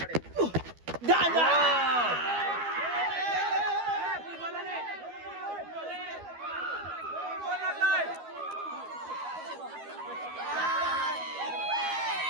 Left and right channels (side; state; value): left; late; 12 ms